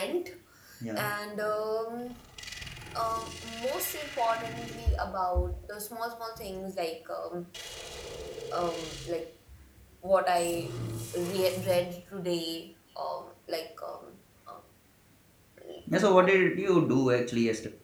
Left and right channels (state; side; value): identical; both; correlation 1.00